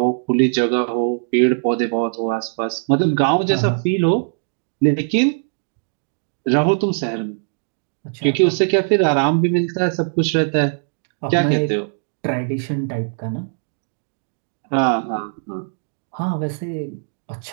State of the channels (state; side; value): silent; left; digital silence